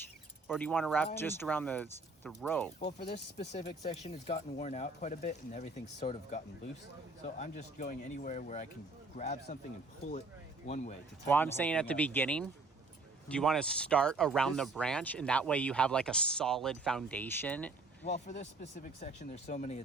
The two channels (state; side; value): quieter; left; 3.5 dB